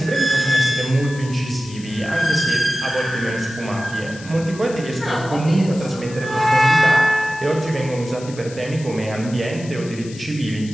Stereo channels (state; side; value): noise; left; hiss, 18 dB below the sound